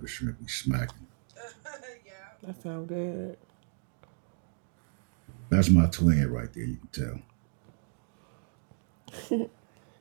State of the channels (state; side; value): silent; left; digital silence